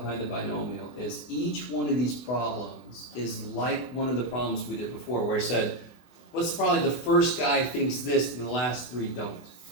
the binomial is each one of these problems is like one of the problems we did before, where I said, what's probably the first guy thinks this and the last 3 don't.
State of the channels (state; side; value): late; right; 24 ms